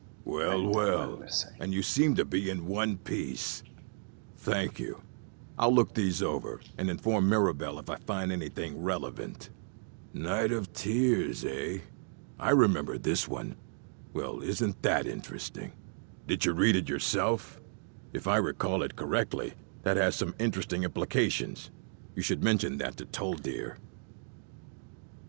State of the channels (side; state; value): left; silent; digital silence